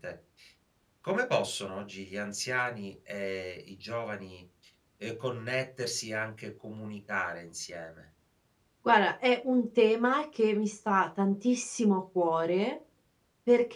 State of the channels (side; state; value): both; identical; correlation 1.00